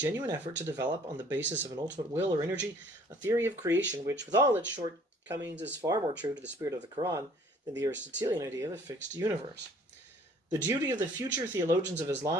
effort to develop, on the basis of an ultimate will or energy, a theory of creation which, with all its shortcomings, is far more true to the spirit of the Quran than the Aristotelian idea of a fixed universe. The duty of the future theologians of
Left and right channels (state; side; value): normal; both; correlation 0.56